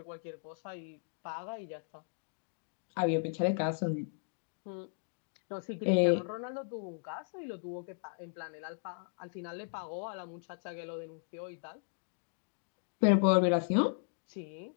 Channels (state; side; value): silent; right; digital silence